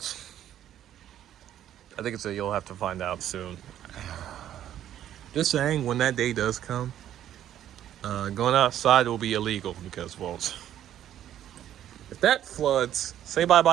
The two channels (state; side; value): quieter; left; 11.3 dB